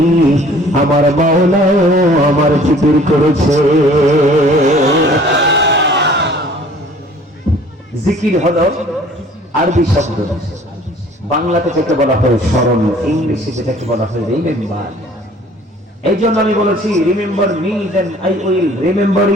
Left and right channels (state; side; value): normal; both; correlation 0.52